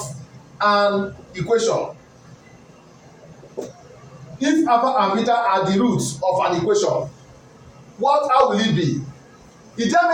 an equation, if alpha and beta are the roots of an equation, how will it be? It tells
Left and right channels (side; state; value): both; identical; correlation 1.00